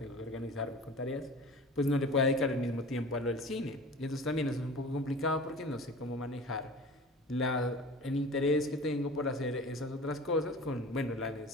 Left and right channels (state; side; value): normal; both; correlation 0.39